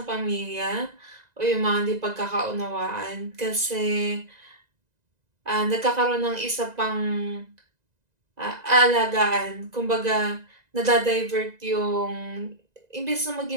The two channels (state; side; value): late; left; 2.0 ms